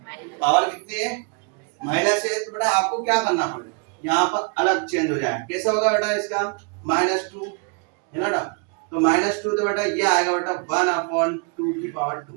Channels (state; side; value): quieter; left; 34.8 dB